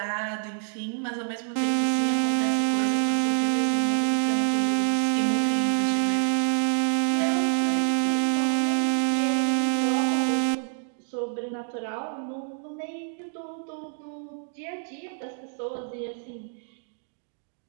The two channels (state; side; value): silent; left; digital silence